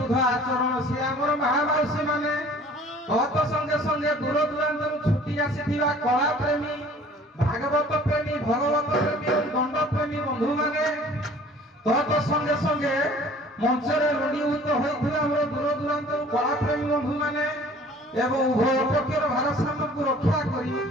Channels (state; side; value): normal; both; correlation 0.51